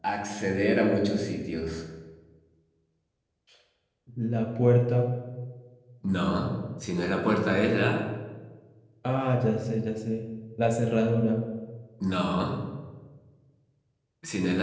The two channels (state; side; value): identical; both; correlation 1.00